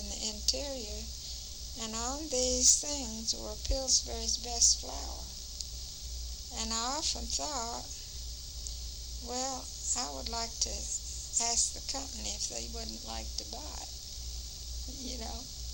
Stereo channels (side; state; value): both; identical; correlation 1.00